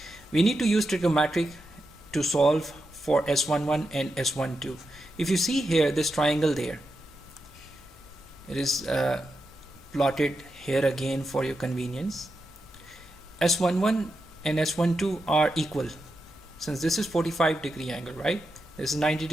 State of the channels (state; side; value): normal; both; correlation 0.87